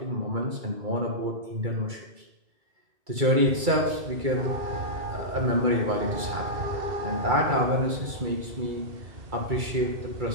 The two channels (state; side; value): late; left; 2.3 ms